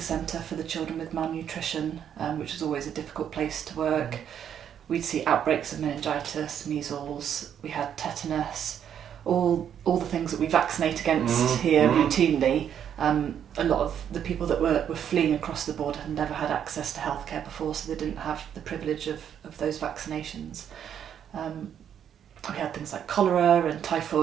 for the children with malnutrition, which was always a difficult place to work. We'd see outbreaks of meningitis, measles, we had tetanus, all the things that we vaccinate against here routinely. A lot of the people that were fleeing across the border had never had access to healthcare before, so they didn't have the privilege of those vaccinations. We had things like cholera and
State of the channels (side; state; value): left; quieter; 9.0 dB